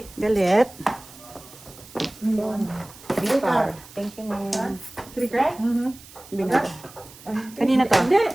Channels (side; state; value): right; noise; hiss, 20 dB below the sound